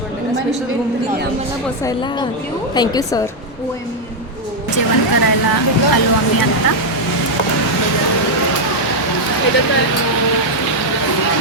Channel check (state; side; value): normal; both; correlation 0.00